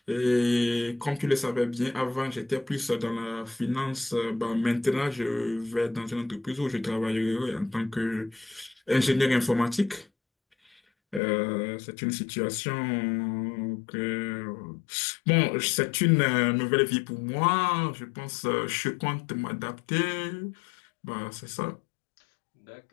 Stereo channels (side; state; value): right; drops out; at 11.2 s